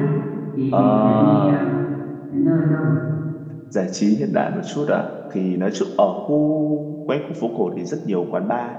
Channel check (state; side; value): identical; both; correlation 1.00